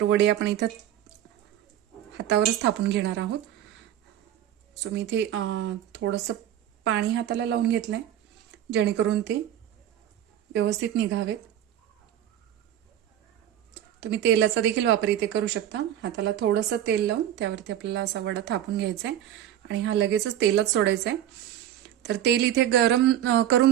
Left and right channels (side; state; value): left; quieter; 11.3 dB